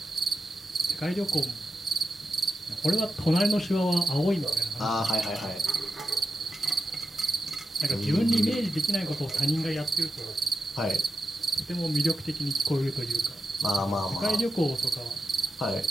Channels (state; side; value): normal; both; correlation 0.89